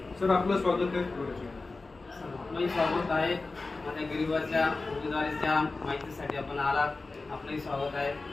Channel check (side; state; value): right; quieter; 3.6 dB